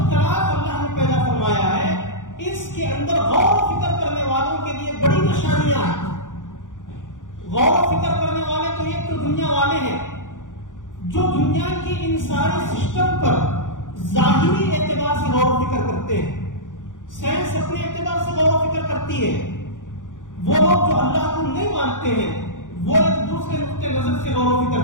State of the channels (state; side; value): late; right; 0.87 ms